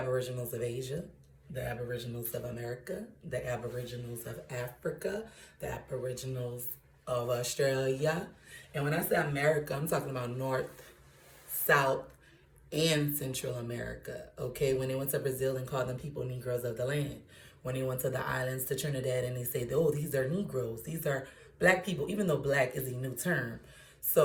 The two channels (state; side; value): identical; both; correlation 1.00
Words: of Asia, the Aboriginals of America, the Aboriginals of Africa, the Aboriginals of Australia. And when I say America, I'm talking about North, South, and Central America. Okay, when they went to Brazil and called them people Negroes of the land. When they went to the islands to Trinidad and they said, oh, these are Negroes, these are black people, even though black is a new term.